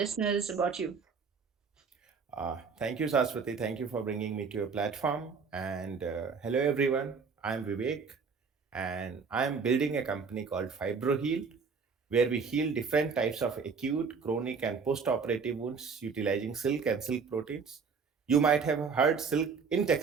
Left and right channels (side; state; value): left; quieter; 5.4 dB